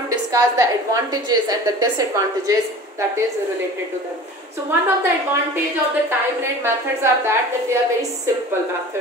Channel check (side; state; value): both; normal; correlation 0.40